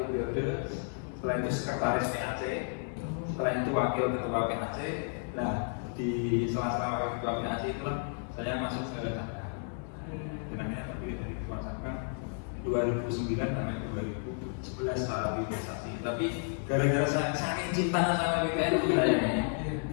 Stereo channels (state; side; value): silent; right; 56 dB below the other